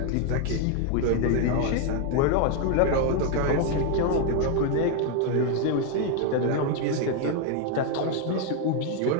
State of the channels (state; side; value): different; both; correlation 0.00